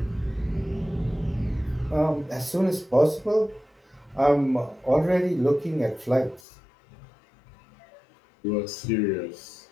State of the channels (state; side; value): drops out; right; at 6.4 s